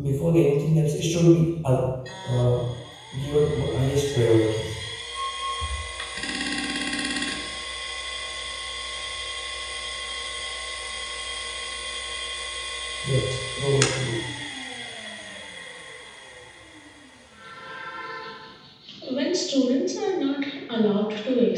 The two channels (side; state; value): both; identical; correlation 1.00